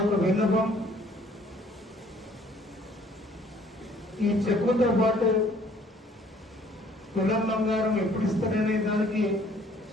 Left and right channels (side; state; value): both; normal; correlation 0.58